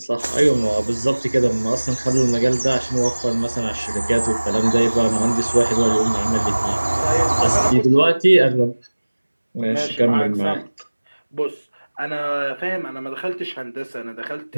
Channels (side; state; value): both; inverted; correlation -1.00